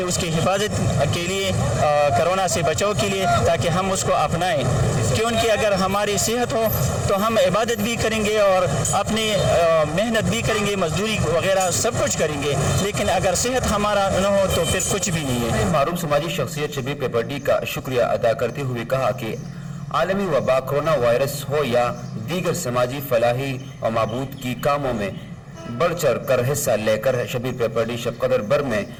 उसकी हिफाजत के लिए, कोरोना से बचाव के लिए, ताकि हम उसको अपनाएं। क्योंकि अगर हमारी सेहत हो तो हम इबादत भी करेंगे और अपनी मेहनत भी करेंगे, मजदूरी वगैरह सब कुछ करेंगे, लेकिन अगर सेहत हमारा न हो तो फिर कुछ भी नहीं है। मारूफ समाजी शख्सियत शबीर पेपरडी का शुक्रिया अदा करते हुए कहा कि आलमी वबा कोरोना वायरस हो या दीगर समाजी फलाही और मबूद की कामों में बढ़ चढ़ कर हिस्सा लेकर शबीर पेपरडी शबकदर बर में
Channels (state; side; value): identical; both; correlation 1.00